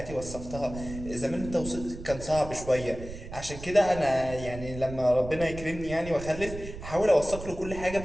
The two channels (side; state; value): right; noise; rumble, 11 dB below the sound